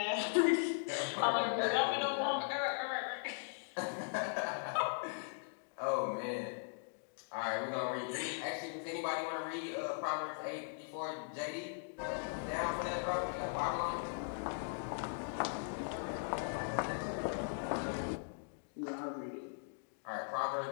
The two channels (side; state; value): right; silent; digital silence